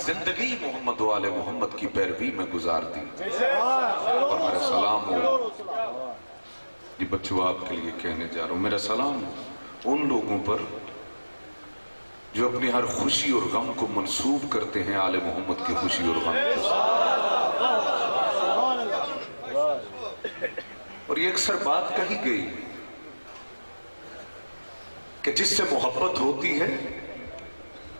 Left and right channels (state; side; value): inverted; both; correlation -1.00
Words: زندگی محمد و آل محمد کی پیروی میں گزار دی۔ اور میرا سلام ہو، یہ بچوں آپ کے لیے کہنے جا رہا ہوں، میرا سلام ہو ان لوگوں پر جو اپنی ہر خوشی اور غم کو منسوب کرتے ہیں آل محمد کی خوشی اور غم کو۔ اور یہ اکثر بات کہی گئی کہ جس سے محبت ہوتی ہے